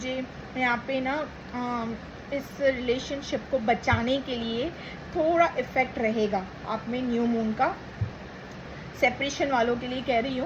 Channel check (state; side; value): identical; both; correlation 1.00